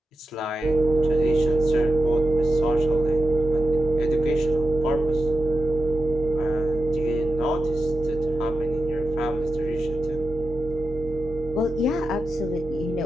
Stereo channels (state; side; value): normal; both; correlation 0.91